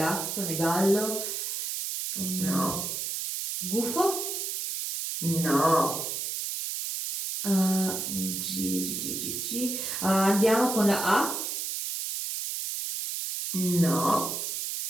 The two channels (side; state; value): right; noise; hiss, 3 dB below the sound